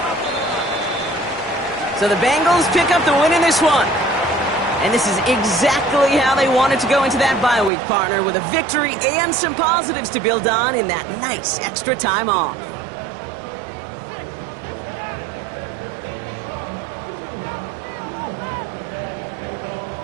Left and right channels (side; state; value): left; drops out; at 7.7 s